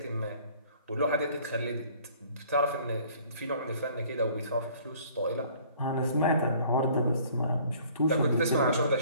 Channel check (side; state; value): both; inverted; correlation -0.55